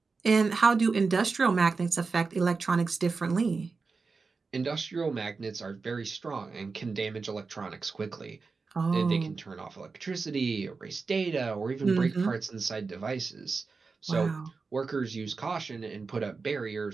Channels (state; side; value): quieter; left; 4.5 dB